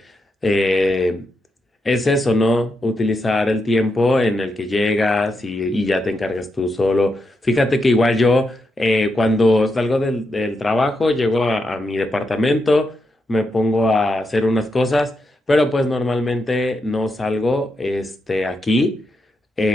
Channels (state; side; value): normal; both; correlation 0.84